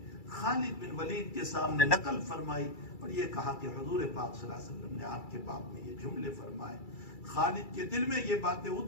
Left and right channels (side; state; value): right; late; 2.3 ms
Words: خالد بن ولید کے سامنے نقل فرمائی، اور یہ کہا کہ حضور پاک صلی اللہ علیہ وسلم نے آپ کے باب میں یہ جملے فرمائے۔ خالد کے دل میں یہ باتیں